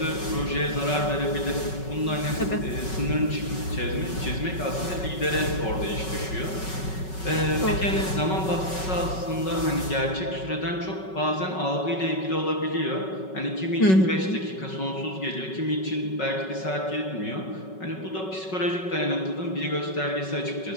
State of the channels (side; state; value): right; late; 5.4 ms